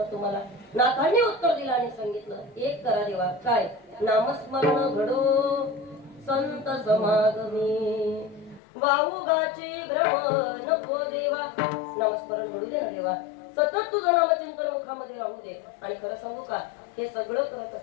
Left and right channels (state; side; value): drops out; right; at 8.6 s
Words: तुम्हाला? नाथांनी उत्तर दिलं आणि सांगितलं, एक करा देवा. काय? नामस्मरण घडो संत समागमी, वाऊगाची भ्रम नको देवा. नामस्मरण घडू दे ना देवा, सतत तुझं नामचिंतन मुखामध्ये राहू दे. आणि खरं सांगू का, हे सगळं करत